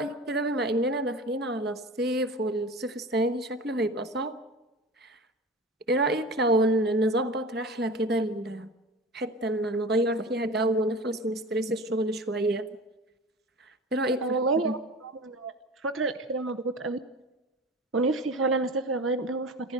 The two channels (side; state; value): both; normal; correlation 0.35